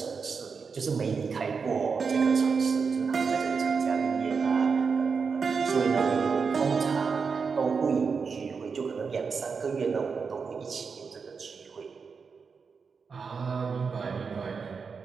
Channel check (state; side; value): quieter; left; 5.4 dB